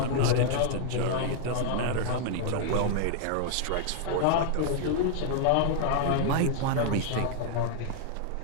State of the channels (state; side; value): different; both; correlation -0.01